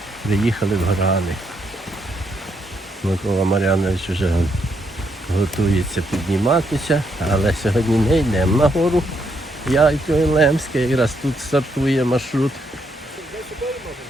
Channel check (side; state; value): both; normal; correlation 0.76